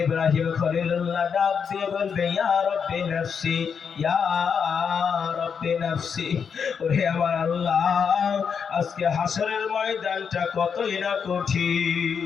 ইব্রাহিম খলিলুল্লাহ ডাক দিয়ে বলবে, ইয়া রাব্বি নাফসি, ইয়া রাব্বি নাফসি। ওরে আমার আল্লাহ, আজকে হাসরের ময়দানটা কতই না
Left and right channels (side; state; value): right; quieter; 6.6 dB